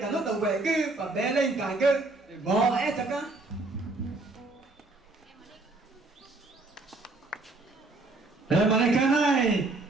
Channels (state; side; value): quieter; left; 3.2 dB